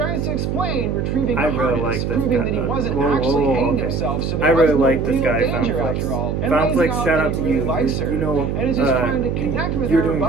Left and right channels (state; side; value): noise; right; hum, 1 dB below the sound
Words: to explain, retrieving I the really harness, like this proving guy. that he wasn't Whoa, actually whoa, hanging okay. himself, so I there really was no like this real guy, danger Foundflix. after all. And lays Foundflix, out shout that out he to really you. likes her, You know, and is just trying to you connect connect with You're her, doing a